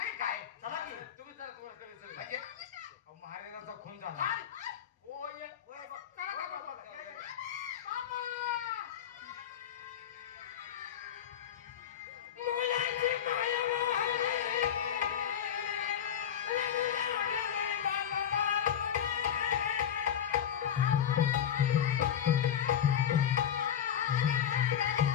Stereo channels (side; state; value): right; quieter; 9.3 dB